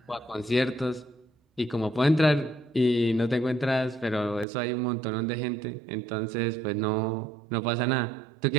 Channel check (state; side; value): drops out; left; at 4.5 s